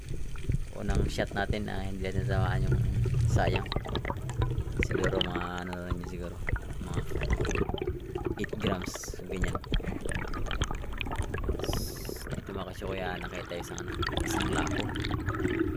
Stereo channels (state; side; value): identical; both; correlation 1.00